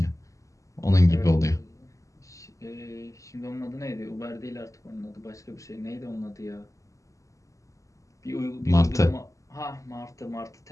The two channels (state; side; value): late; right; 0.16 ms